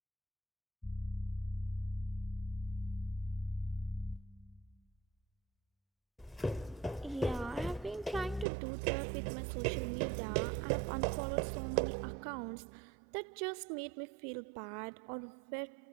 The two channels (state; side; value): drops out; left; at 8.5 s